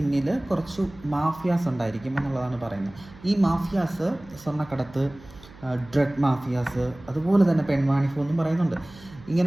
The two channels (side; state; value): right; noise; hum, 21 dB below the sound